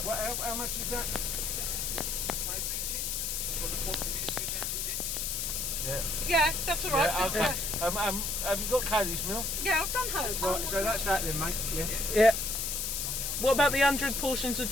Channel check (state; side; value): noise; left; hiss, 1 dB below the sound